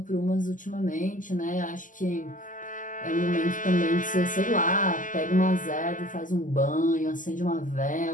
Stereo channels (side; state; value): right; late; 0.38 ms